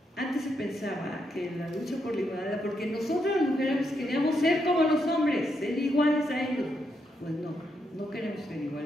antes se pensaba que la lucha por la igualdad, porque nosotros las mujeres queríamos ser como los hombres, ser iguales a ellos. Pues no, no queremos ser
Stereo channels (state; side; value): normal; both; correlation 0.80